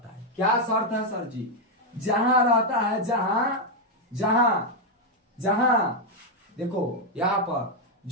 है। क्या शर्त है सर जी? जहां रहता है, जहां देखो यहां पर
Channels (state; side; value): normal; both; correlation 0.01